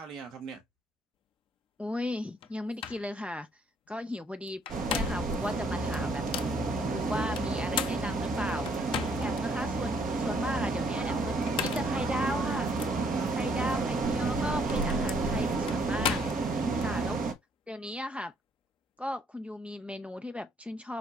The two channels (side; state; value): both; normal; correlation 0.66